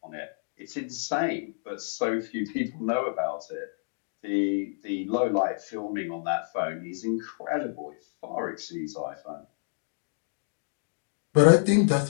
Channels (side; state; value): right; silent; digital silence